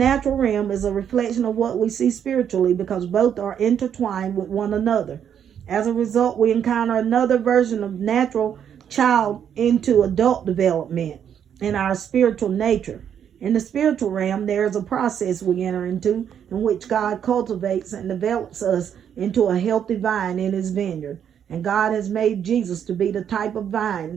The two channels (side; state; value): left; quieter; 8.7 dB